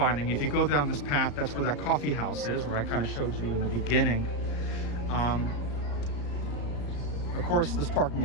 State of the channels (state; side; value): late; right; 34 ms